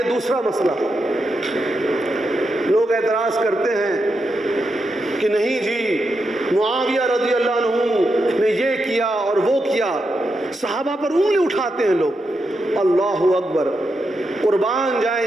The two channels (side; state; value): both; normal; correlation 0.85